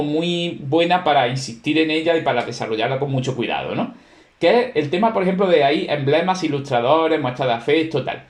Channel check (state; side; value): identical; both; correlation 1.00